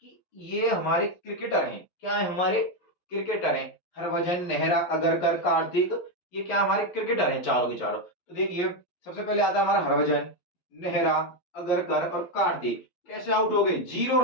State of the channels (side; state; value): right; late; 11 ms